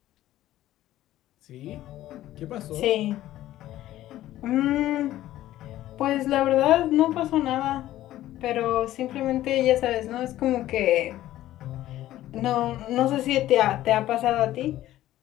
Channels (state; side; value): quieter; right; 14.2 dB